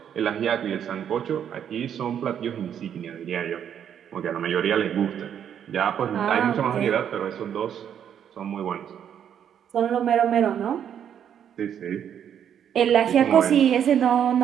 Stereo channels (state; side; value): quieter; left; 9.0 dB